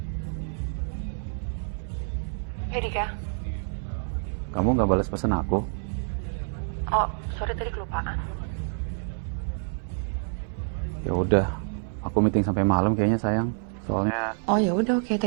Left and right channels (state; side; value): silent; left; digital silence